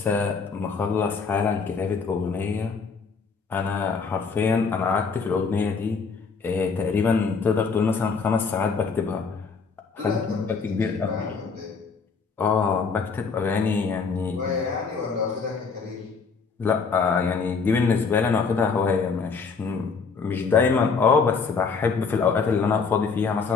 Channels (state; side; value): quieter; right; 5.1 dB